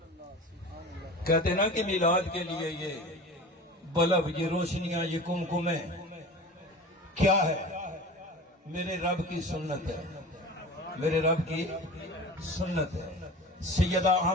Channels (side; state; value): both; normal; correlation 0.36